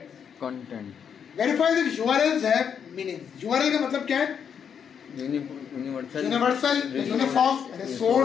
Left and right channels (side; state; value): right; quieter; 7.5 dB